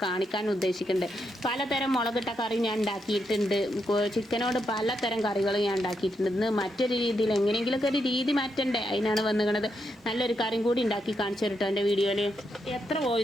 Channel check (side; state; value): both; normal; correlation 0.82